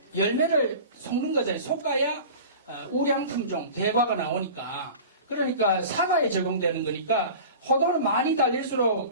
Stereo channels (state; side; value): inverted; both; correlation -0.37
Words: 열매를 섞는 거잖아요. 솎아야 우량품종, 대과가 나오니까. 그러니까 사과에 적용되는 거니까 호도는 많이